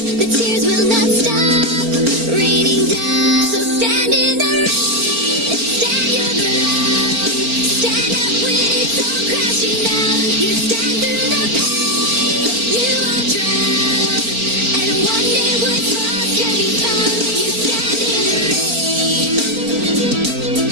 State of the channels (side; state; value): left; late; 4.4 ms